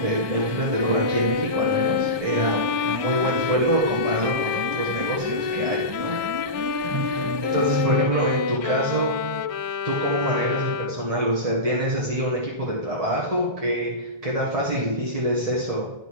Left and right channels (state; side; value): late; left; 1.2 ms